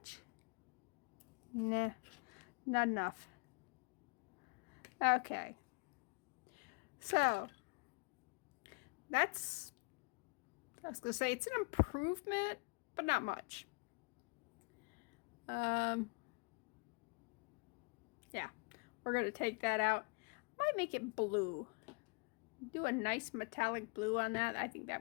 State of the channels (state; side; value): quieter; right; 32.7 dB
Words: Nah, not enough. Okay. So, that's, I was going to say, it's an improvement, but not much. Yeah, we're going to take that out. Might make it blue. Do a nice metallic blue on that. I think that